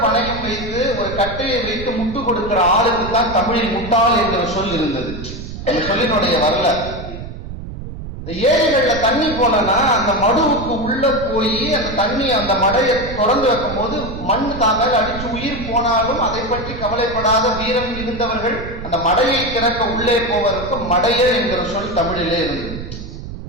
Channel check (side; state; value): right; noise; rumble, 10 dB below the sound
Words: பணயம் வைத்து ஒரு கட்டையை வைத்து முட்டு கொடுக்கிற ஆளுக்கு தான் தமிழில் முட்டாள் என்கிற சொல் இருந்தது. அந்த சொல்லினுடைய வரலாறு. ஏரிகள்ல தண்ணி போனா அந்த மடுவுக்கு உள்ள போய் அந்த தண்ணி அந்த மடையை தொடர்ந்து வைக்கும் போது மண் தாங்க அடிச்சு உயிர் போனாலும் அதை பற்றி கவலைப்படாத வீரம் இருந்தவர்கள் அந்த மடையை திறக்க உள்ளே போவதற்கு மடையர் என்கிற சொல் தமிழிலே இருந்தது.